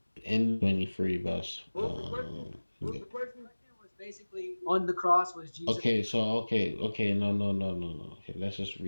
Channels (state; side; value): inverted; both; correlation -1.00